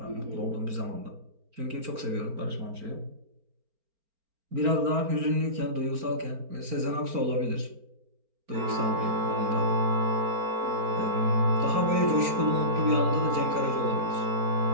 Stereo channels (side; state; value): left; late; 4.4 ms